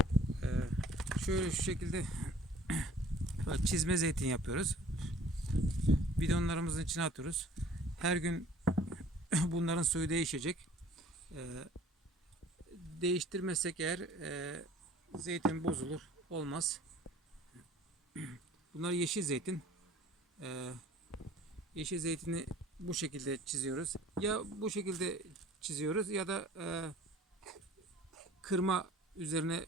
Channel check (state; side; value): normal; both; correlation 0.51